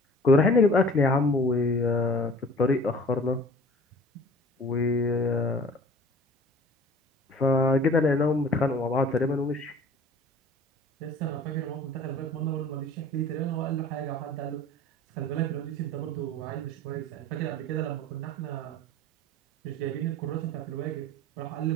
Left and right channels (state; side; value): normal; both; correlation 0.46